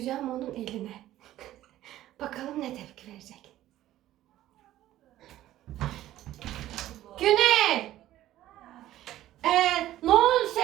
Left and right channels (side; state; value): left; quieter; 14.0 dB